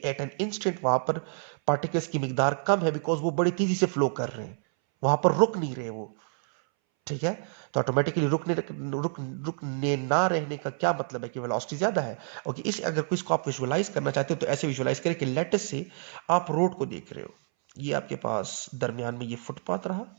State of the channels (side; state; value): left; silent; 59 dB below the other